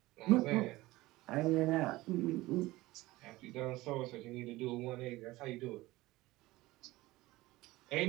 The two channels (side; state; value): left; quieter; 18.9 dB